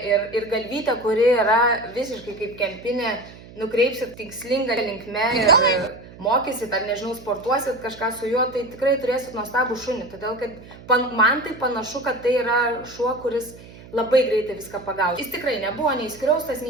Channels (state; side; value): noise; right; hum, 19 dB below the sound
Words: ir galvytę, kuri yra visiškai kaip kempinė, nukreipsit tikslingą linkme ir mokysit, ar nežinau, sportuosit kažką su juo, tai tikrai turėsit nuostabų šunį. Todėl, kad man tai panašu, kad tai yra šuo, kuris labai greitai viską pagaus. Jis tikrai nebuvo nei skriaustas,